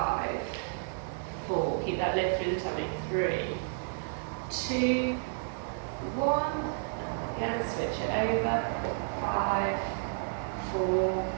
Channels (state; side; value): silent; left; digital silence